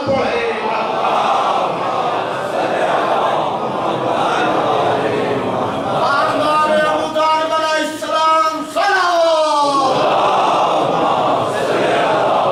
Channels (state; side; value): identical; both; correlation 1.00